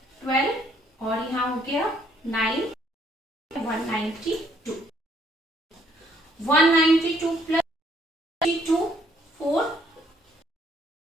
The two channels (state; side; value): normal; both; correlation 0.66